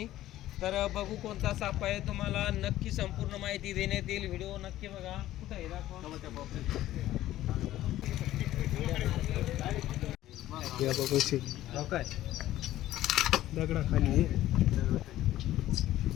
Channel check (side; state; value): right; quieter; 14.3 dB